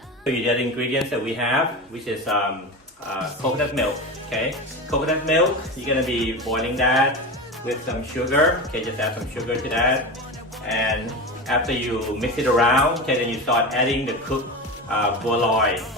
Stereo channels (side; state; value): both; normal; correlation 0.24